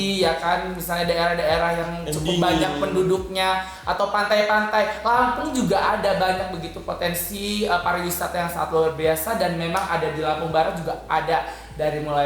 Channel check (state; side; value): identical; both; correlation 1.00